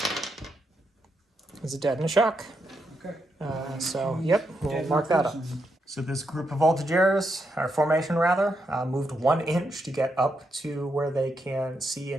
is a dead and a shock. Okay. So, yep, we'll Dead mark that up. person. So this group of voltigeurs, or formation rather, moved 1 inch to get up to where they can see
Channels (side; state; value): both; normal; correlation 0.82